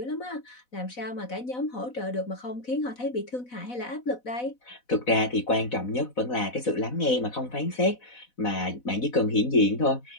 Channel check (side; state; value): right; late; 4.0 ms